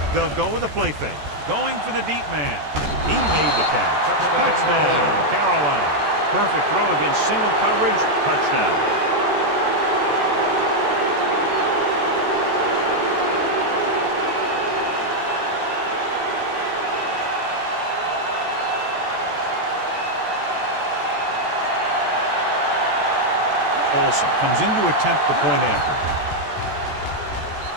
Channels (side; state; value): left; late; 14 ms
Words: They'll go with a play fake. Going for the deep man. He made the catch. Touchdown, Carolina. Perfect throw against single coverage. Touchdown. Olsen comes in to attempt the point after.